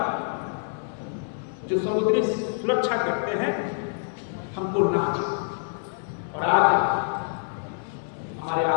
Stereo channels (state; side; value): silent; right; digital silence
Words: जो समुद्री सुरक्षा करते हैं हमको नाच। और आज हमारे